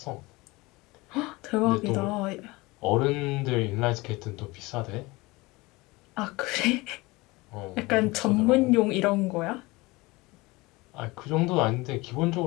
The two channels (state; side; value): quieter; right; 22.6 dB